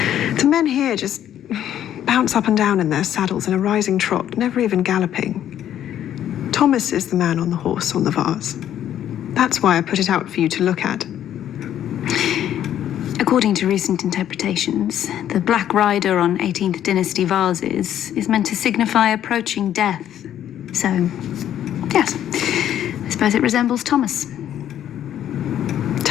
The men here just bounce up and down in their saddles in a rising trot, never even galloping. Thomas is the man on the horse on the vase. That's why I put it out for you to look at. According to recent interpretations, the Black Rider on 18th Dynasty vases is meant to signify approaching death. So, yes, I suppose it resembles Thomas.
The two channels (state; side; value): quieter; right; 10.9 dB